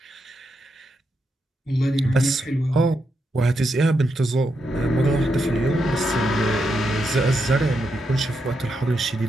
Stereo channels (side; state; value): both; normal; correlation 0.83